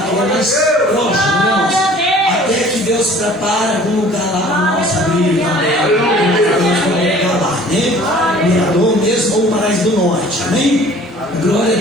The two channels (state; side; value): normal; both; correlation 0.50